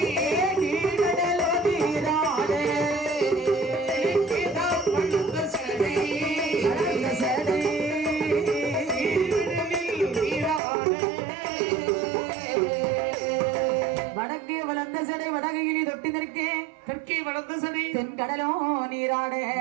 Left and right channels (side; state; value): left; drops out; at 10.6 s